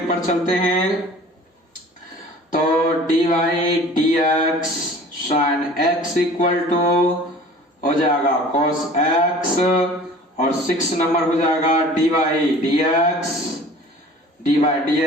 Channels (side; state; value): both; normal; correlation 0.46